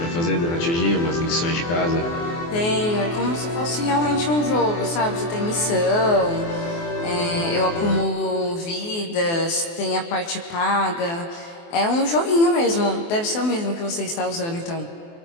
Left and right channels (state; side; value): late; right; 24 ms